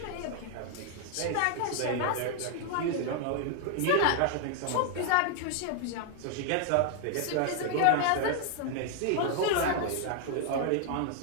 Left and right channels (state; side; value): different; both; correlation 0.00